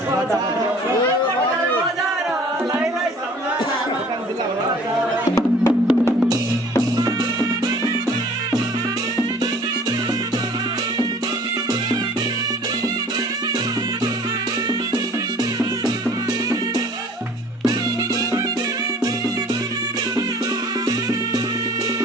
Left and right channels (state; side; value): normal; both; correlation 0.50